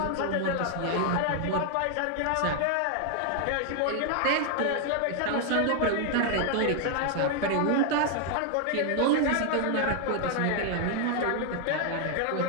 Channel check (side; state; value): both; different; correlation 0.00